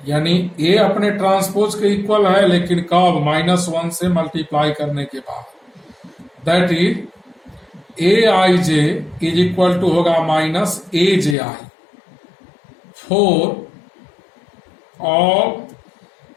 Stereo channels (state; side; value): drops out; right; at 11.4 s